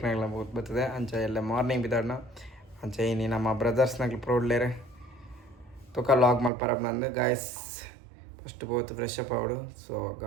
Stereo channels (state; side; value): drops out; left; at 6.5 s